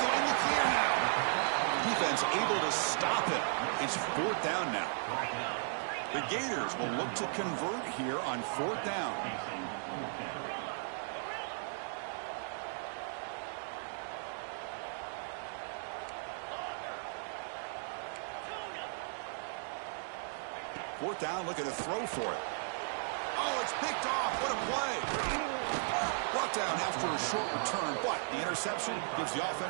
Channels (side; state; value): left; silent; digital silence